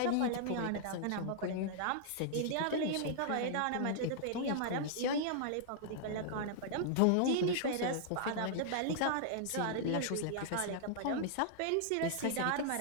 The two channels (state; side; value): different; both; correlation -0.01